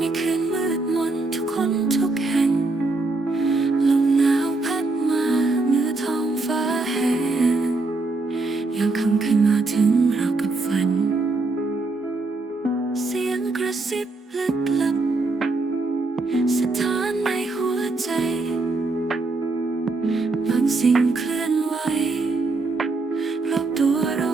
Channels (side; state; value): left; quieter; 3.4 dB